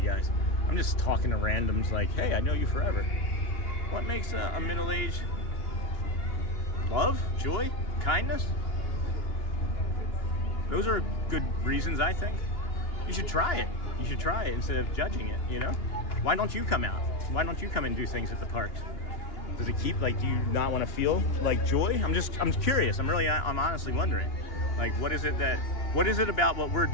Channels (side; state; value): right; late; 2.8 ms